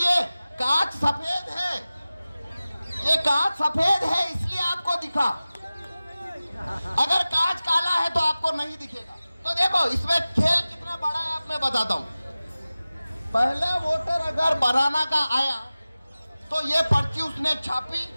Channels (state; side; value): inverted; both; correlation -0.97